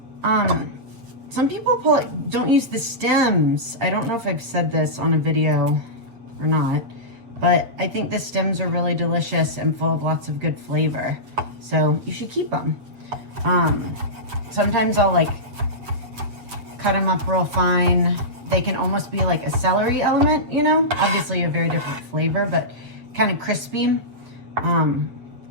Some people don't use the stems. I don't know if I've said this on a video or not, but I think the stems are really delicious and full of lots of good flavor. So you should keep them. Sometimes I'll cut them up real fine. They can almost be like a celery element, you know? Obviously a very different flavor, but kind of crispy.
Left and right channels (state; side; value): late; left; 8.2 ms